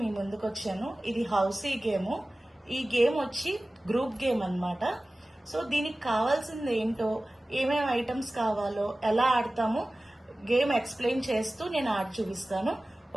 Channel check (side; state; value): both; normal; correlation 0.97